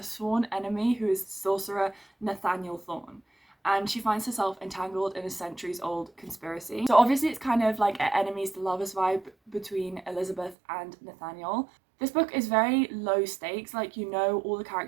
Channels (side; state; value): left; drops out; at 10.6 s